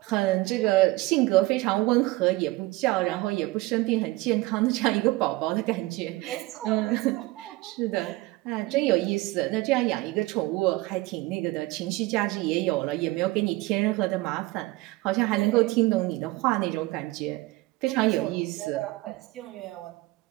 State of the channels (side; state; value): left; quieter; 20.6 dB